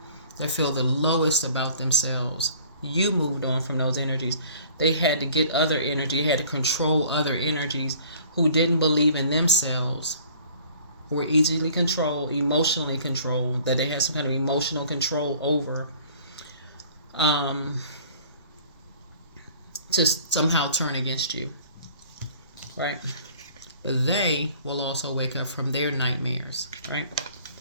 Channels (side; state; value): both; inverted; correlation -0.52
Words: they feel the lowest about themselves. You moved on from those energies. They had to get other energy, had to control other energies who didn't believe in themselves, who were easily controlled, emotionally controlled, that they had some kind of emotional control over, to somehow turn against you, right? But they will also wake up from their nightmares,